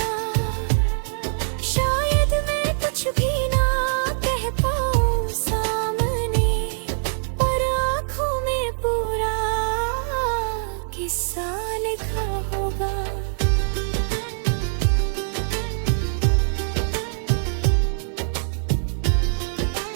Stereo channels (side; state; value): left; silent; 63 dB below the other